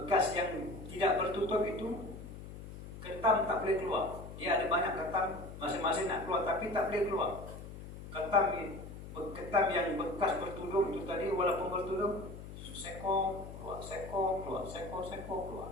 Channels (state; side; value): noise; left; hum, 12 dB below the sound